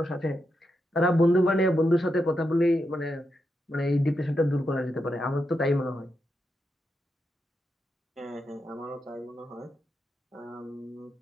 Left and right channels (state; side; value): normal; both; correlation 0.85